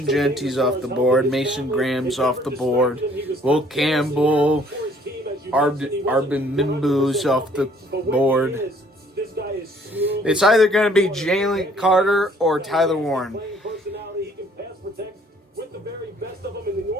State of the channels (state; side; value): normal; both; correlation 0.59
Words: Genty's off the board. Mason Graham's off the board. Will Campbell, Arbin Mimbu's off the board. It's either going to be Jalen Carter or Tyler Warren.